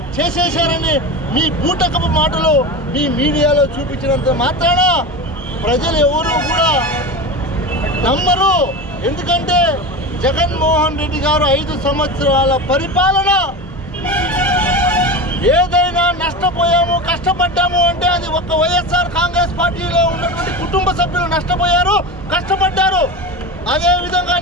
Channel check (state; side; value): normal; both; correlation 0.26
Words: చేసేశారని మీ బూటకపు మాటలు మీ మీడియాలో చూపించినంత మాత్రాన ప్రజలు ఎవరు కూడా నమ్మరు. ఎందుకంటే జగన్మోహన్ రెడ్డి గారు 5 సంవత్సరాల పరిపాలన ఏదైనా నష్టపోయాము కష్టపడ్డాము అంటే అది ఒక్క వైఎస్ఆర్ కాంగ్రెస్ పార్టీలో ఉన్నటువంటి కుటుంబ సభ్యులు నష్టపోయారు, కష్టపడ్డారు. అదేవిధంగా